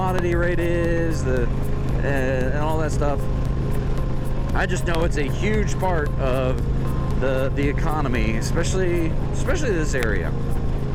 rate is, and all that stuff. I just know it's a huge part of the economy, especially this area.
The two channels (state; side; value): identical; both; correlation 1.00